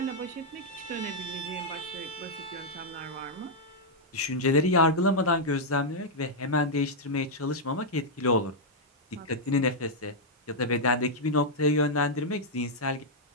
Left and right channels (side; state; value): both; normal; correlation -0.04